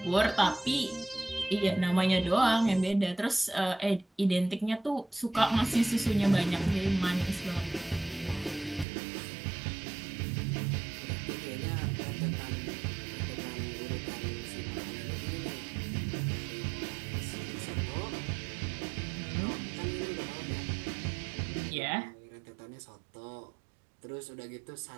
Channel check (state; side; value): drops out; left; at 8.8 s